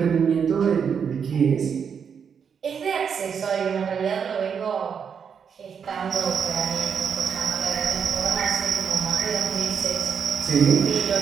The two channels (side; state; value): left; quieter; 7.0 dB